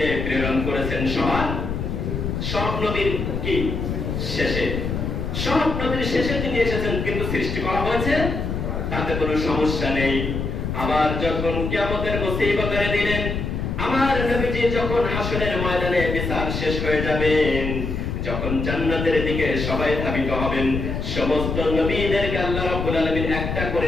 প্রেরণ করেছেন সব নবীর কি শেষে, সব নবীর শেষে তিনি এসেছেন, কিন্তু সৃষ্টি করা হয়েছে তাতে কোনো সমস্যা নেই। আবার যখন কিয়ামতের মুসিবতের দিনে আমার নবীজি যখন হাসরের ময়দানে বিচার শেষ হয়ে যাবেন, যখন জান্নাতের দিকে সবাই ধাবিত হবেন, সমস্ত নবীদেরকে আল্লাহ রাব্বুল আলামিন একটা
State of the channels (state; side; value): noise; left; rumble, 3 dB below the sound